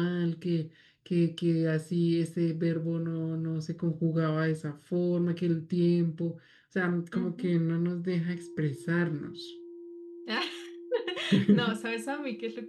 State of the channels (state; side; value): identical; both; correlation 1.00